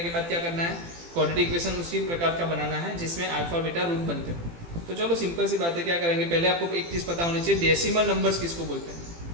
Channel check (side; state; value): left; late; 18 ms